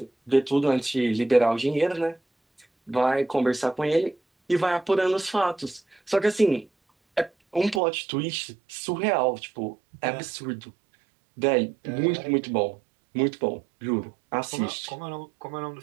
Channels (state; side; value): drops out; left; at 7.8 s